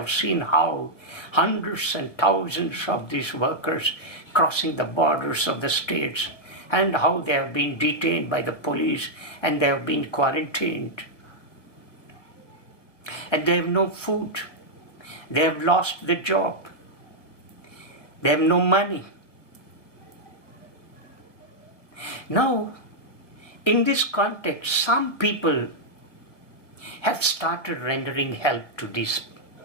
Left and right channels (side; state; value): right; late; 1.0 ms